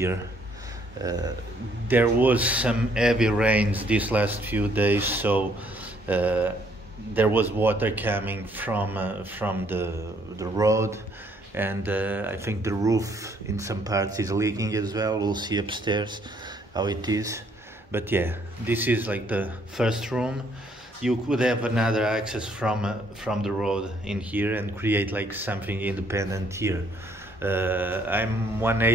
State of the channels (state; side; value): normal; both; correlation 0.66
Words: There was some heavy rains these last few days, so there was water coming from the road, and I think the roof in some parts is leaking as well. We'll see upstairs how it is. But yeah, this is like the first room. You could have another access from the road in here and create like something independent here. I'm